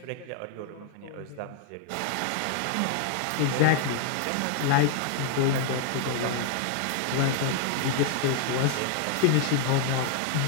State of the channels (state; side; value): different; both; correlation -0.01